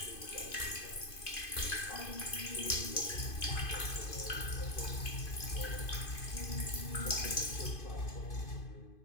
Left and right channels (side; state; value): right; late; 2.5 ms